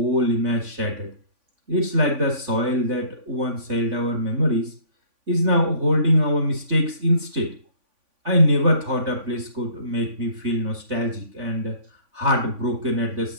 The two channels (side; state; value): left; late; 3.5 ms